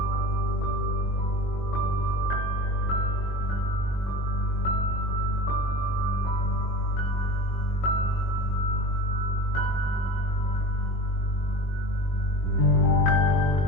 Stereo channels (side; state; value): right; late; 22 ms